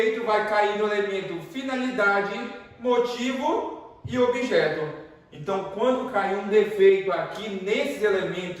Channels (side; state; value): both; identical; correlation 1.00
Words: vai cair no elemento finalidade, motivo e objeto. Então, quando cair um defeito aqui nesses